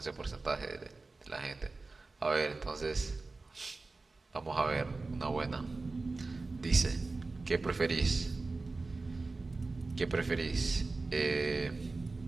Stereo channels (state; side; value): quieter; left; 3.6 dB